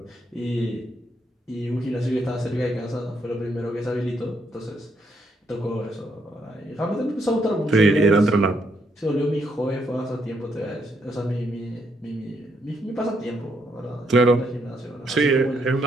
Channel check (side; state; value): both; normal; correlation 0.75